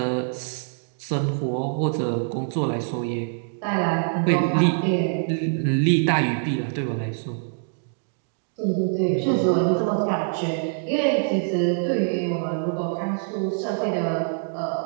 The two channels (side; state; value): left; silent; digital silence